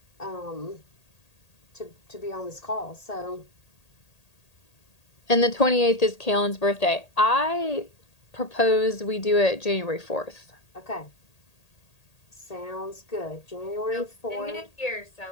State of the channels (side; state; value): right; late; 1.8 ms